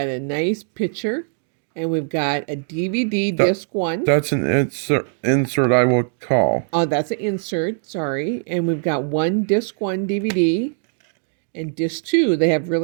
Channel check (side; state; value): left; silent; 65 dB below the other